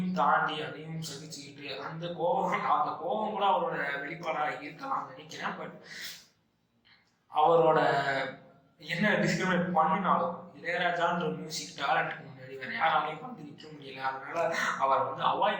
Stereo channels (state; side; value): identical; both; correlation 1.00